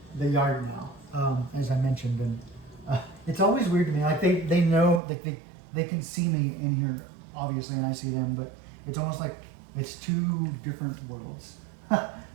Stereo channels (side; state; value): left; drops out; at 5.0 s